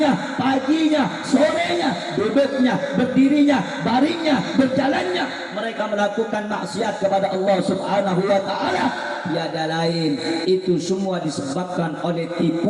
paginya, sorenya, duduknya, berdirinya, baringnya, berjalannya, mereka melakukan maksiat kepada Allah Subhanahu wa taala. tiada lain, itu semua disebabkan oleh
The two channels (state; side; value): identical; both; correlation 1.00